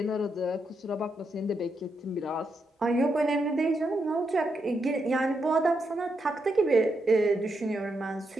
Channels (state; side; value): normal; both; correlation 0.82